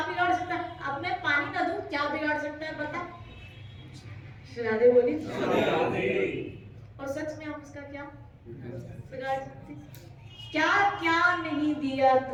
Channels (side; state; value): both; identical; correlation 1.00